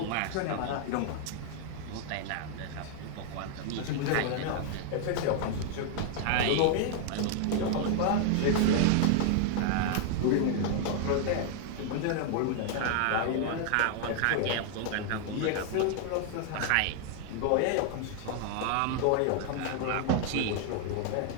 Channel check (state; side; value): different; both; correlation 0.00